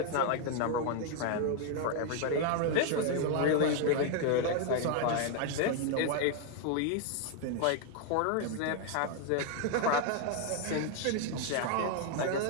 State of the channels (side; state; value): both; different; correlation 0.00